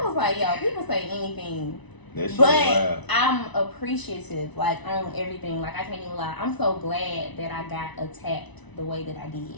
was like, yo, people say anything. But I'm appreciative, like, on everything. Like, I can't even lie. I'm so glad that I got attacked the way that I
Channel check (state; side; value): late; right; 1.0 ms